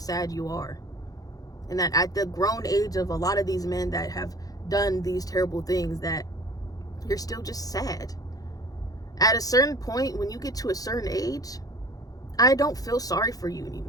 you are. And that at the grown age of a lot of these men that have done these terrible things, that you're still just sad. At a certain point, when you get to a certain age, I don't feel sorry for you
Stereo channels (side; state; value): right; late; 0.18 ms